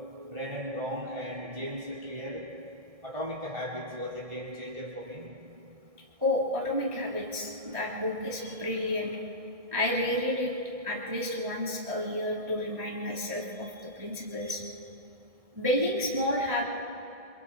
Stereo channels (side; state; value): left; late; 1.6 ms